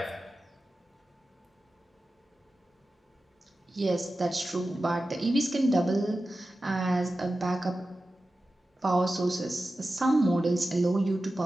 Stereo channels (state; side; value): normal; both; correlation 0.94